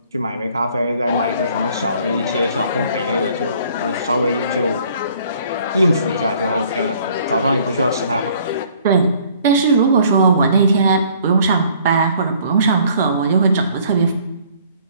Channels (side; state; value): both; inverted; correlation -0.58